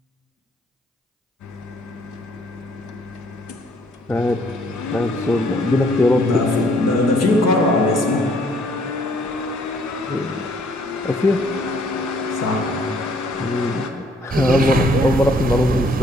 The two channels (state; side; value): normal; both; correlation 0.63